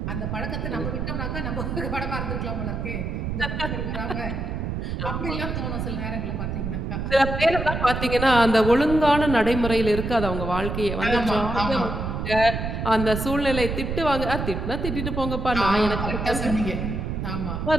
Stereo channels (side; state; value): right; noise; rumble, 3 dB below the sound